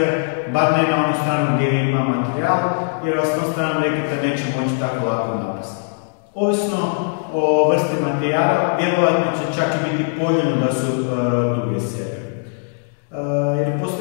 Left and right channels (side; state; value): right; silent; digital silence